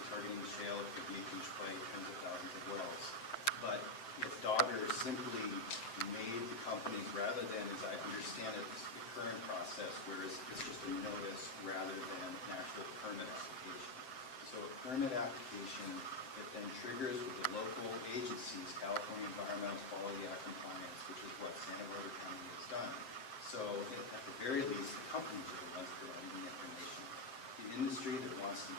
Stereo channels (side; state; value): right; late; 7.6 ms